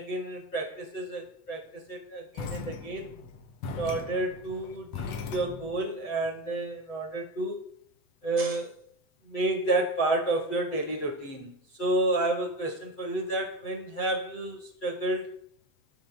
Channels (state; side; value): late; right; 7.8 ms